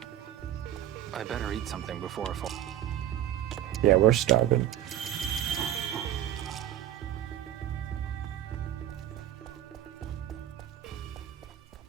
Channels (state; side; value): quieter; left; 11.7 dB